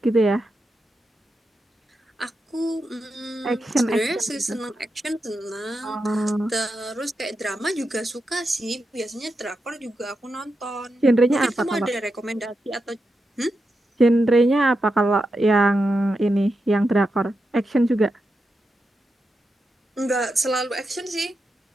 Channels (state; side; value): normal; both; correlation 0.88